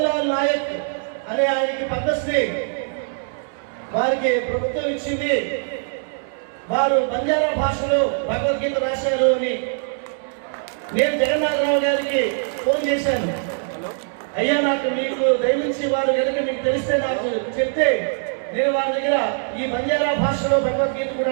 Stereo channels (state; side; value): silent; left; 64 dB below the other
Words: నాయక్ అనే ఆయనకి పద్మశ్రీ వారికి ప్రభుత్వం ఇచ్చింది, వారు బంజారా భాషలో భగవద్గీత రాశారు అని. నేను జగన్నాథరావు గారికి ఫోన్ చేశాను, అయ్యా నాకు మీకు దయవించి వారు కనుక మీకు తెలిస్తే నాకు చెప్తే నేను వారి దగ్గర ఈ బంజారా భాషలో భగవద్గీత